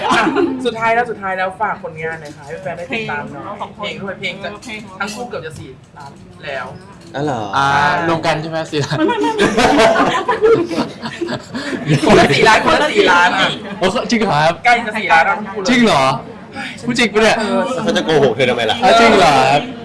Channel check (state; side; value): identical; both; correlation 1.00